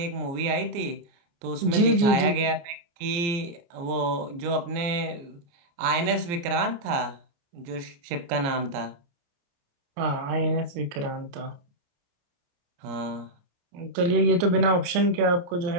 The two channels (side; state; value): left; late; 29 ms